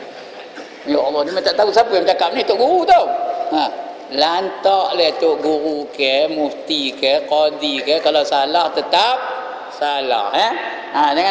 Ya Allah, dia tak tahu siapa yang cakap ni, tok guru tau. Lantaklah tok guru ke, mufti ke, qadi ke, kalau salah tetap salah ya.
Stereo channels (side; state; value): both; identical; correlation 1.00